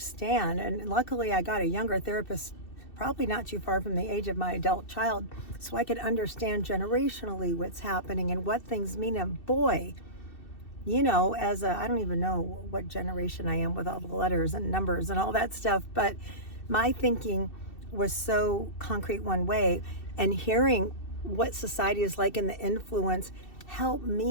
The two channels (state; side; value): late; right; 2.7 ms